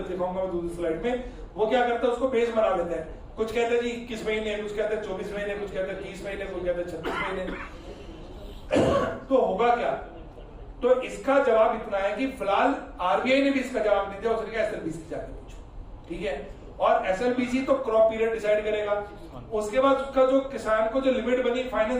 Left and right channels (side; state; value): both; identical; correlation 1.00